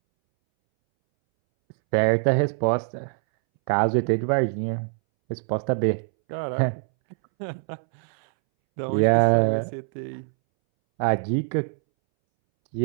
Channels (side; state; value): left; silent; 63 dB below the other